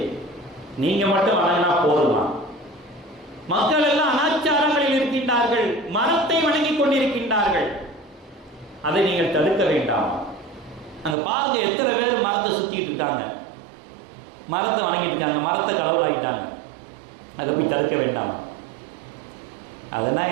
நீங்க மட்டும் வணங்கினா போதுமா? மக்கள் எல்லாம் அனாச்சாரங்களில் இருக்கின்றார்கள், மரத்தை வணங்கிக் கொண்டிருக்கின்றார்கள். அதை நீங்கள் தடுக்க வேண்டாம். அந்த பாருங்க, எத்தனை பேர் மரத்தை சுத்திட்டு இருக்காங்க, மரத்தை வணங்கிட்டு இருக்காங்க, மரத்தை கடவுளாயிட்டாங்க. அதை போய் தடுக்க வேண்டாம். அதெல்லாம்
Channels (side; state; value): left; drops out; at 11.2 s